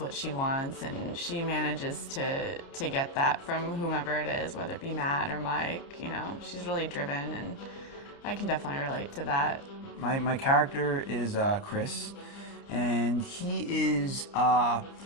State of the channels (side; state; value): right; late; 29 ms